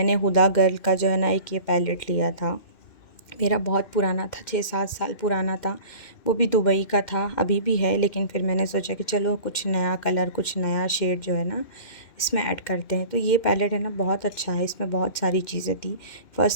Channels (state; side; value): late; right; 2.1 ms